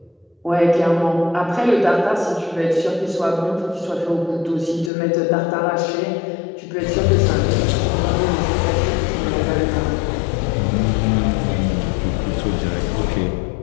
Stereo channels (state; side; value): drops out; right; at 4.9 s